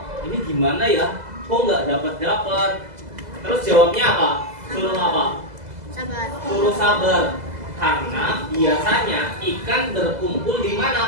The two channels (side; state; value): left; late; 2.0 ms